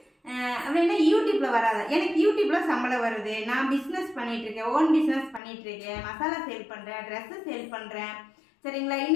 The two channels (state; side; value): drops out; right; at 5.4 s